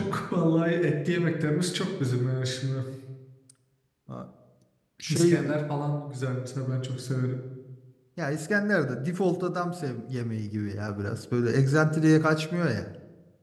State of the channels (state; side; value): identical; both; correlation 1.00